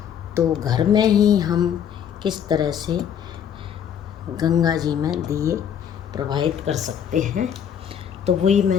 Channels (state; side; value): quieter; right; 8.7 dB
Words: तो घर में ही हम किस तरह से गंगा जी में दिए प्रवाहित कर सकते हैं, तो वही